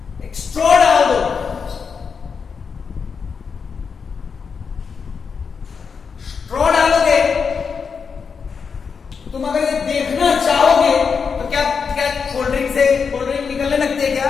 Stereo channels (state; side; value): quieter; right; 5.8 dB